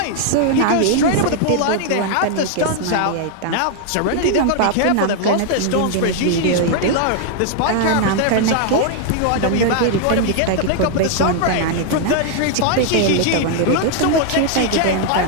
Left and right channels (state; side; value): different; both; correlation 0.00